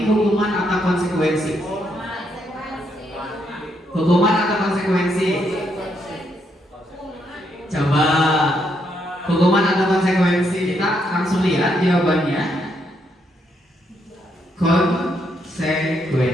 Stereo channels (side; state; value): both; normal; correlation 0.76